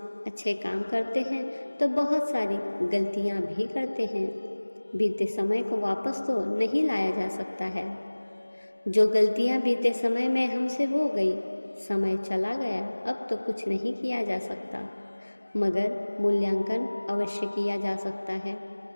अच्छे काम करते हैं तो बहुत सारी गलतियां भी करते हैं। बीते समय को वापस तो नहीं लाया जा सकता है। जो गलतियां बीते समय में हमसे हो गई, समय चला गया, अब तो कुछ नहीं किया जा सकता, मगर मूल्यांकन अवश्य किया जा सकता है।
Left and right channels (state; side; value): inverted; both; correlation -1.00